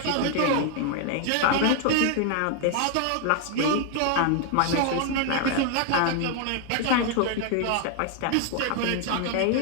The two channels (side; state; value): both; different; correlation 0.00